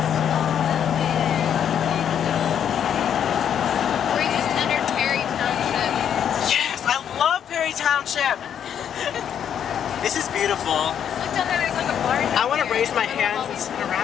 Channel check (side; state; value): right; quieter; 8.9 dB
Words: We just entered Perry Township. Yes, I love Perry Township. This is beautiful. Look down there, there's like a bar. I want to raise my hands and spin